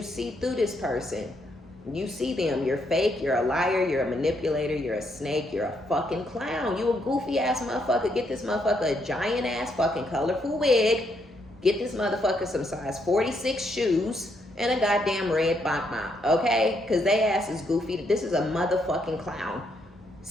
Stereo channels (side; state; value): both; normal; correlation 0.75